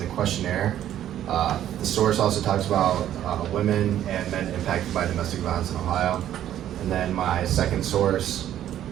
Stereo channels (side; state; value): left; quieter; 11.5 dB